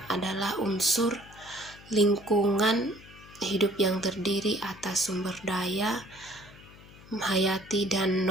adalah unsur lingkungan hidup yang terdiri atas sumber daya hayati dan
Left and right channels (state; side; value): noise; left; hum, 21 dB below the sound